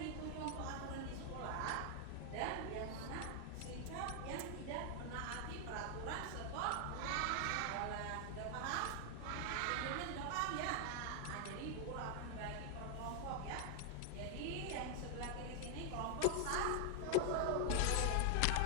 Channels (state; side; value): different; both; correlation 0.00